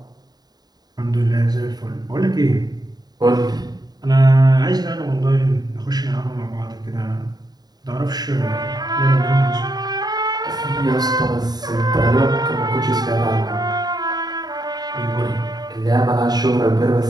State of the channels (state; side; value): late; left; 0.19 ms